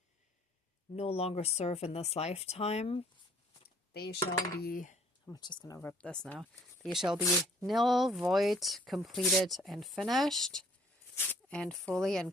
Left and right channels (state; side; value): normal; both; correlation 0.59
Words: no longer serve in this lifetime. They shall be, I'm just going to rip this now. They shall be nil, void, completed, and finished, and fully and